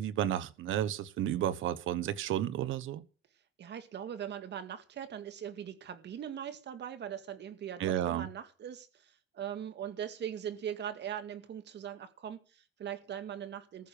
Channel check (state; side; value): quieter; left; 10.3 dB